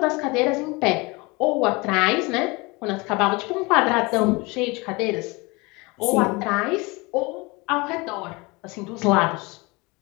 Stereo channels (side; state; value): right; quieter; 25.4 dB